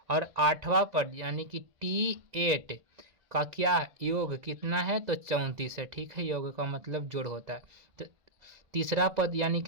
और आठवां पद यानी कि t8 का क्या योग कितना है, तो 34 है। ठीक है, योग का मतलब जोड़ होता है। तो तीसरा पद यानी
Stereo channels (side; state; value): left; late; 2.0 ms